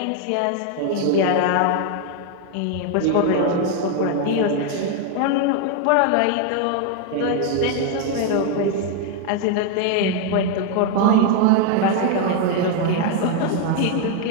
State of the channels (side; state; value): both; different; correlation 0.00